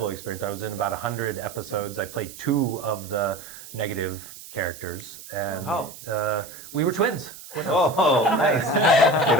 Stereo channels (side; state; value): right; noise; hiss, 16 dB below the sound